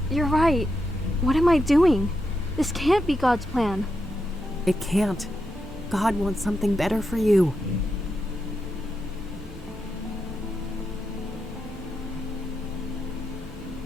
You're right. What am I doing? This can't be God's plan. It can't. God wants something better for you.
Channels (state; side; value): normal; both; correlation 0.85